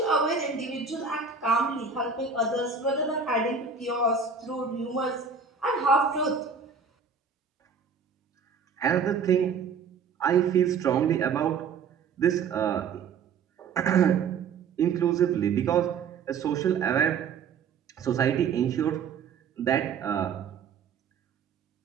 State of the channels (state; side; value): quieter; left; 5.8 dB